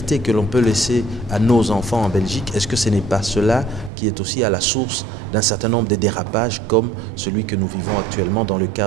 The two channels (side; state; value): left; drops out; at 3.9 s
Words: que l'on peut laisser à nos enfants en Belgique, est-ce que ce n'est pas cela qui est aussi à la source d'un certain nombre de dérapages comme celui que nous vivons actuellement dans le